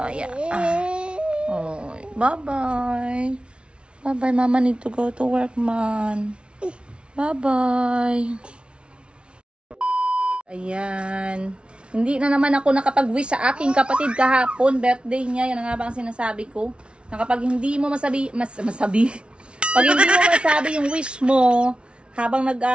yeah. Oh, bye-bye. Bye-bye, Mama need to go to work, man. Bye-bye. Ayan. Hindi na naman ako nakapag-wish sa aking kapatid kahapon. Birthday niya. Yan nga ba ang sinasabi ko? Na kapag hindi mo pag hindi mo masabi yung wish mo, habang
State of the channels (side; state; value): left; late; 0.058 ms